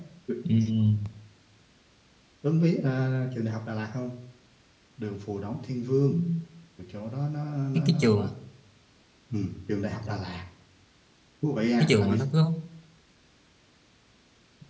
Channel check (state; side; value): identical; both; correlation 1.00